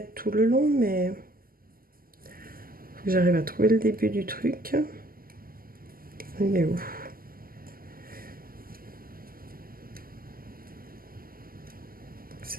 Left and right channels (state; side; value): late; left; 0.42 ms